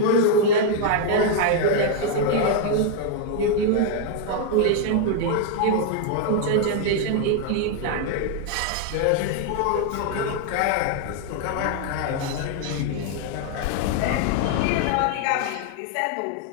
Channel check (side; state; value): both; different; correlation 0.00